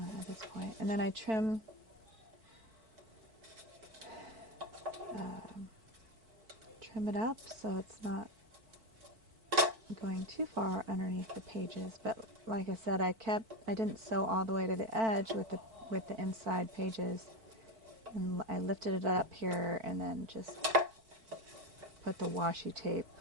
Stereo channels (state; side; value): late; left; 4.5 ms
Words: this point. And then I trim it up so it's not going too far underneath the pages. But like I said, I didn't sew all the way to the edge with the inside pages, and I lifted it up here and then just put the washi tape